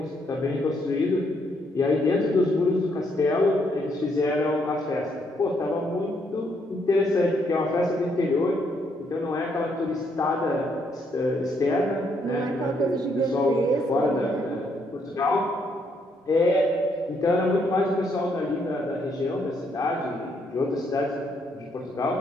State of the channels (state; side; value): normal; both; correlation 0.73